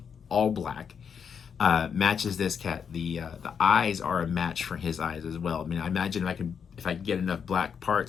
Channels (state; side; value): quieter; right; 7.0 dB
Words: all black. Matches this cat. The eyes are a match for his eyes as well. I mean, I imagine if I could get enough black